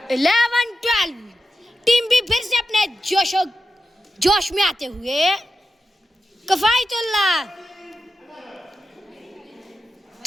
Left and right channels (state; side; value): normal; both; correlation 0.90